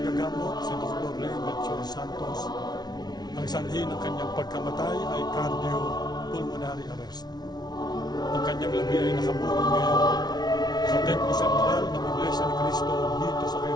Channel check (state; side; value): late; right; 0.19 ms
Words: si Dr. Ray Melchor Santos, ang sanhi ng kanyang pagkamatay ay cardiopulmonary arrest. Ang kanyang labi ay nakaburol ngayon sa Templo Central ng Iglesia ni Cristo dito sa